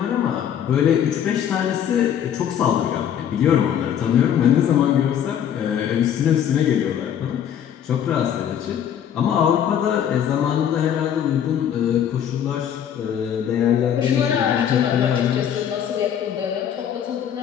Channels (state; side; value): quieter; right; 9.3 dB